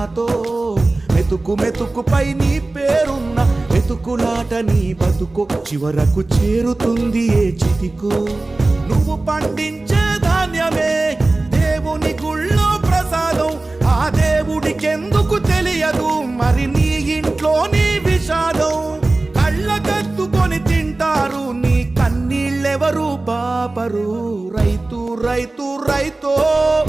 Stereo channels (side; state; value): left; quieter; 3.1 dB